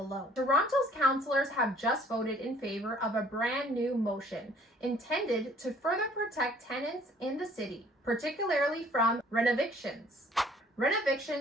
Toronto's councillors have just voted in favor of a brand new motion intended to further protect tenants in the city, particularly from renovictions.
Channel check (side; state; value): both; normal; correlation 0.57